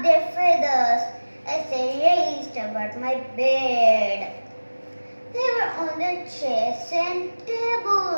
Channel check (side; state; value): both; inverted; correlation -1.00